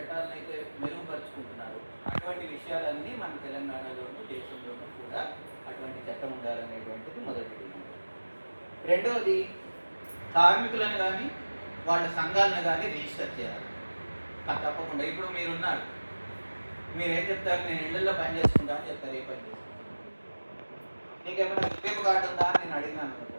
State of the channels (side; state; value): both; inverted; correlation -1.00